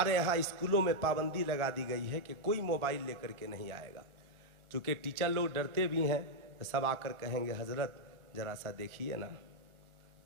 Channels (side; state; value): left; late; 1.3 ms